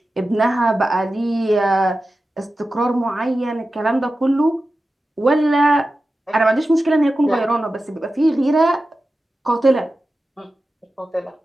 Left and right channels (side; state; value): both; normal; correlation 0.93